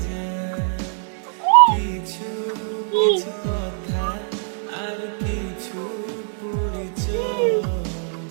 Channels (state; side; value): silent; left; digital silence